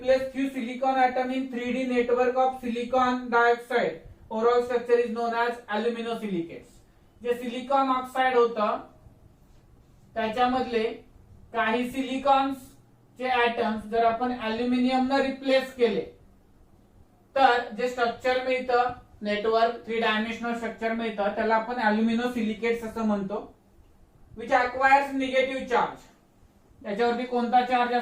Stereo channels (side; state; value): both; identical; correlation 1.00